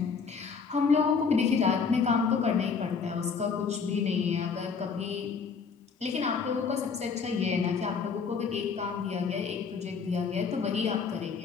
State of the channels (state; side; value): quieter; right; 5.6 dB